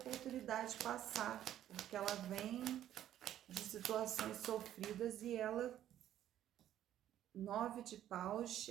passar, porque ela vem de situações sofridas e ela, 9 de paus,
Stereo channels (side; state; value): left; quieter; 11.7 dB